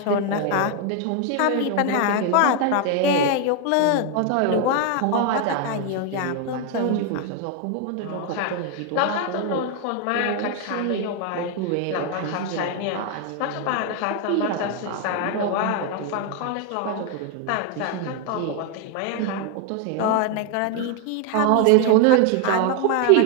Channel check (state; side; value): different; both; correlation 0.01